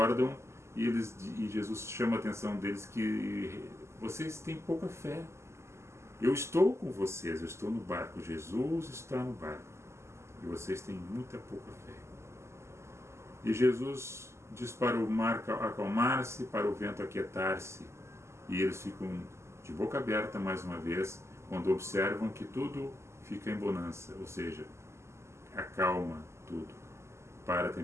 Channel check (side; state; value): left; late; 0.13 ms